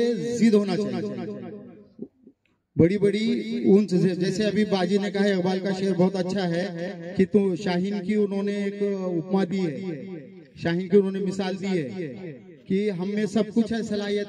जिद होना चाहिए, बड़ी बड़ी ऊंच। जैसे अभी बाजी ने कहा, इकबाल का शेर बहुत अच्छा है कि तू शाहीन की उन्होंने एक उपमा दी है, शाहीन की उन्होंने मिसाल दी है कि हम में सब कुछ है,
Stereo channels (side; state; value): both; identical; correlation 1.00